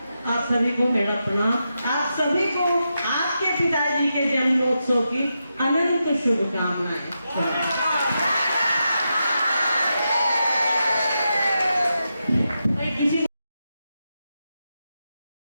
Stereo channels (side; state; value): both; inverted; correlation -0.87